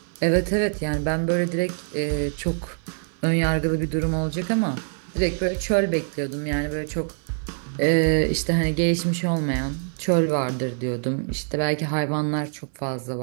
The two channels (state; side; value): silent; left; digital silence